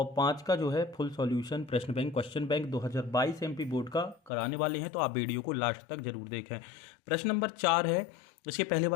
5 का जो है फुल सॉल्यूशन प्रश्न bank question bank 2022 MP board का कराने वाले हैं, तो आप वीडियो को लास्ट तक जरूर देखें। प्रश्न नंबर 4 है। इसके पहले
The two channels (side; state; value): right; drops out; at 4.3 s